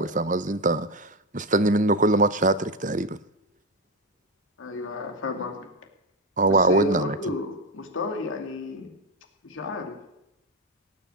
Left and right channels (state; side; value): normal; both; correlation 0.12